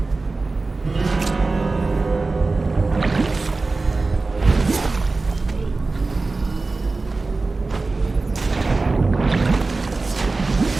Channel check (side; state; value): left; quieter; 3.6 dB